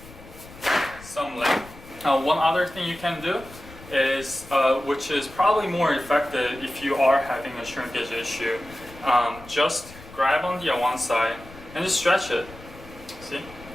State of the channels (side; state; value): left; noise; rumble, 19 dB below the sound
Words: some length. One other thing you can do is, which is probably more effective if you are having a shrinkage issue, just grab on the one side and just stretch it. See?